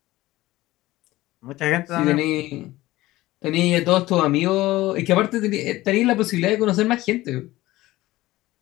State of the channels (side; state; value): right; quieter; 17.6 dB